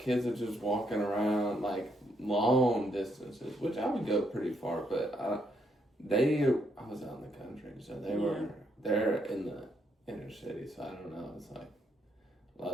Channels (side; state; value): both; normal; correlation 0.75